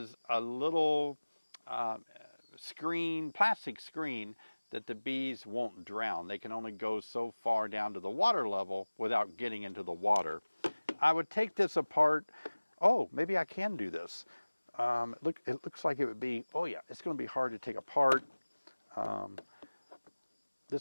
a little plastic screen that the bees won't drown. They can only go so far down to the water level without getting into the water. I would take this apart. Oh, maybe I can do this. It looks like it would be, oh yeah, it's going to be hard to take apart.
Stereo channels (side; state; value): both; inverted; correlation -1.00